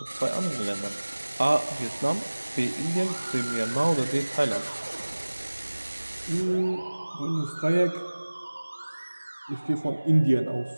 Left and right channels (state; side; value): inverted; both; correlation -1.00